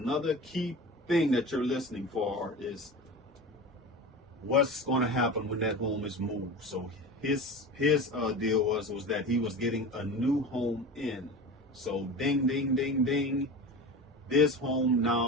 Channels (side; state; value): both; normal; correlation 0.30